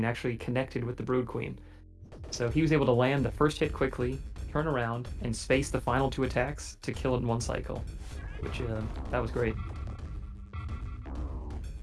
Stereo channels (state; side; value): identical; both; correlation 1.00